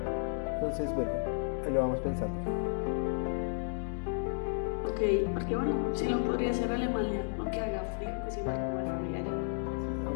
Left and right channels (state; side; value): silent; right; digital silence